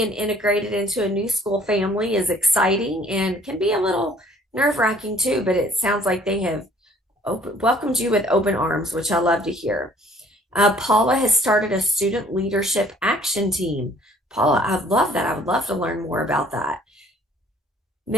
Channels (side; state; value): both; normal; correlation 0.57